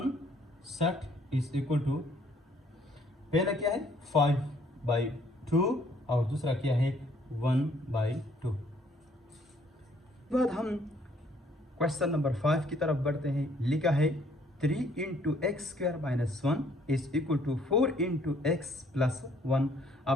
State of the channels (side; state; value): both; normal; correlation 0.63